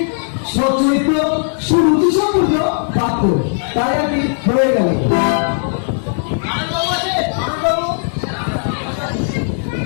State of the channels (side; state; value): right; silent; digital silence